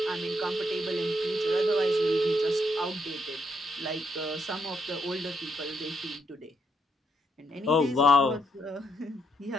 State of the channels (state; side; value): normal; both; correlation 0.76